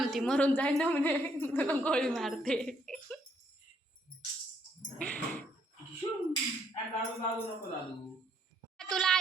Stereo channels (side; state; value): both; normal; correlation 0.70